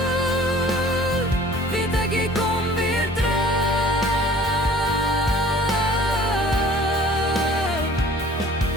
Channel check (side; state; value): both; normal; correlation 0.50